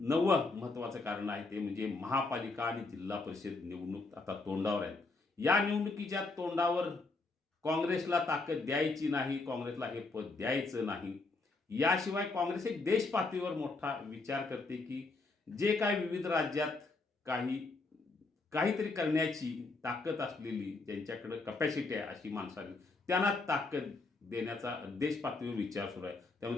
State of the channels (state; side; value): quieter; right; 3.6 dB